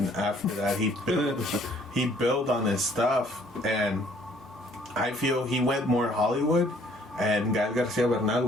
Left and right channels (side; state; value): both; normal; correlation 0.60